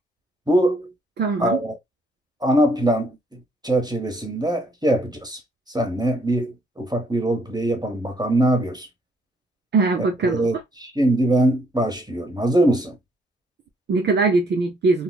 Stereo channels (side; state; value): both; normal; correlation 0.68